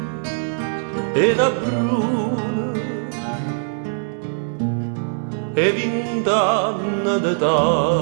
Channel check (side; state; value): left; silent; 65 dB below the other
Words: e una bruna e 20 anni